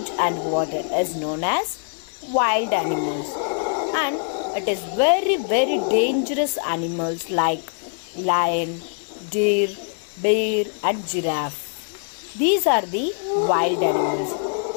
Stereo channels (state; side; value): silent; right; 60 dB below the other